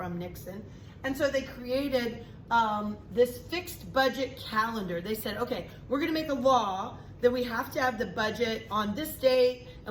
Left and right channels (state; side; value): identical; both; correlation 1.00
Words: Nixon. And so they created this fixed budget calendar. They said, okay, we're going to make a law that we have to have the budget on this date,